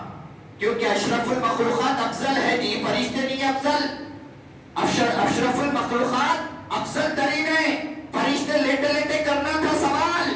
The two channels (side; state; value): both; identical; correlation 1.00